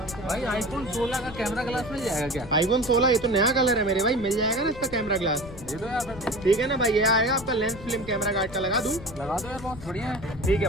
भाई आईफोन 16 का camera glass मिल जाएगा क्या? आईफोन 16 ये तो नया कलर है मेरे भाई, मिल जाएगा ना इसका कैमरा ग्लास? दे दो यार फिर। ठीक है ना भाई, ये आएगा आपका लेंस फिल्म कैमरा गार्ड का, लगा दूं? लगा दो यार, बहुत बढ़िया है। ठीक है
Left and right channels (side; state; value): left; noise; rumble, 15 dB below the sound